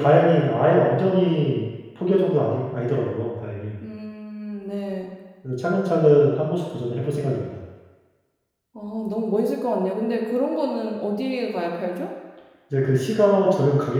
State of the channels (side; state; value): both; identical; correlation 1.00